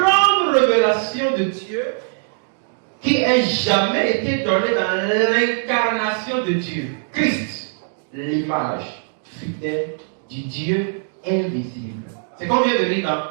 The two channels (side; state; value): left; silent; digital silence